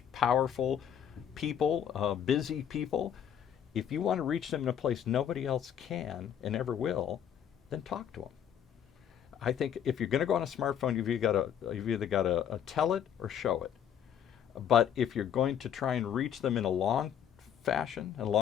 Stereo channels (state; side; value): quieter; right; 9.0 dB